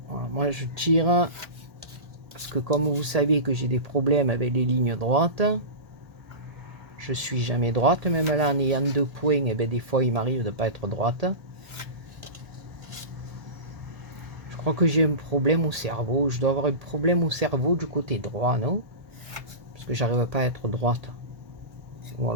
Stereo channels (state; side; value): late; left; 1.8 ms